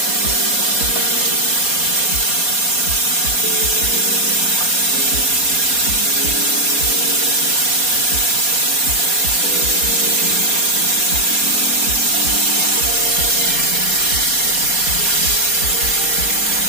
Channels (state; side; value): late; left; 4.2 ms